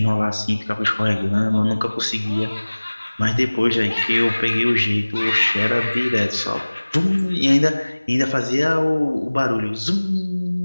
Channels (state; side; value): inverted; both; correlation -1.00